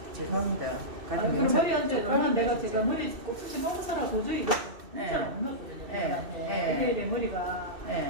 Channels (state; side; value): late; left; 2.7 ms